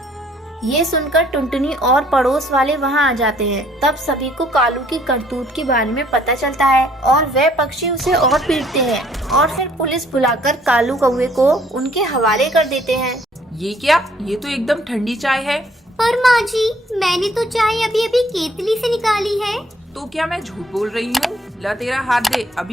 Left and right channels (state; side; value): normal; both; correlation 0.62